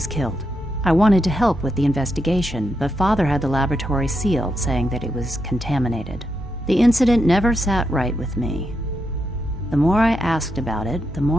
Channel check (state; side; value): normal; both; correlation 0.83